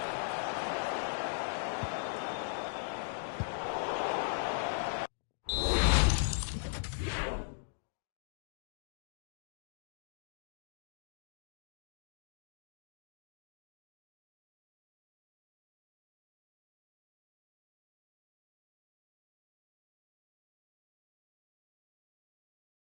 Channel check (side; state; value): right; silent; digital silence